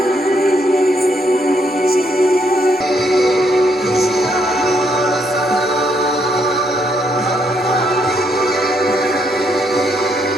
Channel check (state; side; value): normal; both; correlation 0.74